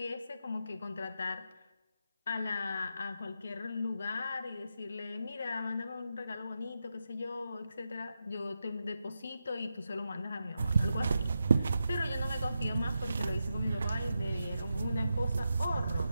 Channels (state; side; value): inverted; both; correlation -0.87